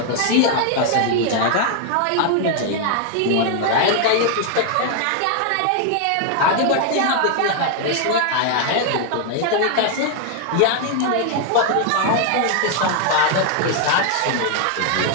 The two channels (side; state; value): both; different; correlation 0.00